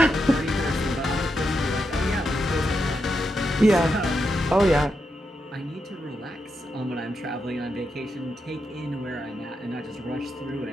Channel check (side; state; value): both; normal; correlation 0.85